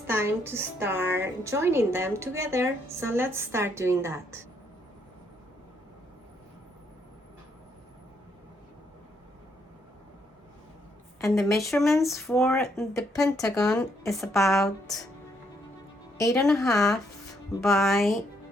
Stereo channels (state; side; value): normal; both; correlation 0.73